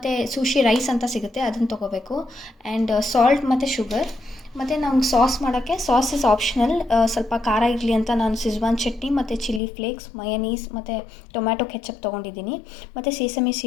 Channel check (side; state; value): right; drops out; at 9.6 s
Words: ಸುಶಿ ರೈಸ್ ಅಂತ ಸಿಗುತ್ತೆ, ಅದನ್ನು ತೊಗೋಬೇಕು. ಆ್ಯಂಡ್ ಸಾಲ್ಟ್ ಮತ್ತು ಶುಗರ್. ಮತ್ತು ನಮ್ಗೆ ಸಾಸ್ ಮಾಡೋಕ್ಕೆ ಸಾಸ್ ಇಸ್ ಆಪ್ಷನಲ್. ಸ್ವಲ್ಪ ಖಾರ ಇರಲಿ ಅಂತ ನಾನು ಸಿಜ್ವಾನ್ ಚಟ್ನಿ ಮತ್ತು ಚಿಲ್ಲಿ ಫ್ಲೇಕ್ಸ್, ಮಯನೀಸ್ ಮತ್ತು ಟೊಮ್ಯಾಟೊ ಕೆಚಪ್ ತೊಗೊಂಡಿದ್ದೀನಿ. ಮತ್ತು ಸೀಸಮಿ